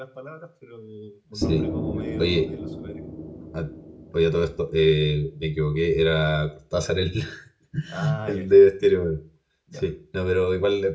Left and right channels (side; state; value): both; identical; correlation 1.00